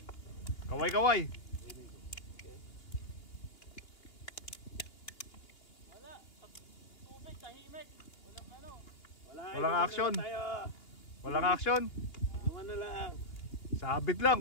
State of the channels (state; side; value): late; right; 2.8 ms